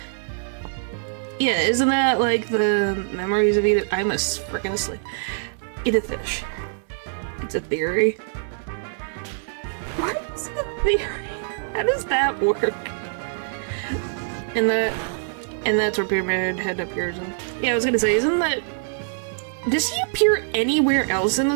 Yeah, isn't that like the memories of Edith? I'm freaking asleep. Edith Finch. It's a theory. What is the theory? How does that work? And that's where Pyramid Head appears in. Yeah, I was gonna say, isn't that... Does he appear anywhere else in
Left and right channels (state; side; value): silent; left; digital silence